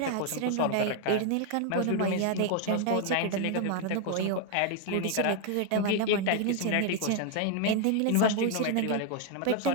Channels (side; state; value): both; different; correlation 0.01